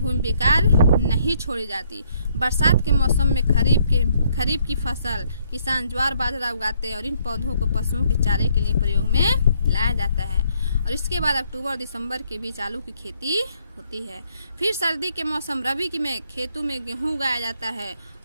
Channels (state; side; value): inverted; both; correlation -0.69